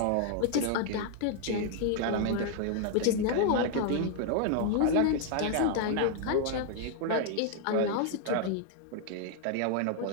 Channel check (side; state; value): both; different; correlation 0.00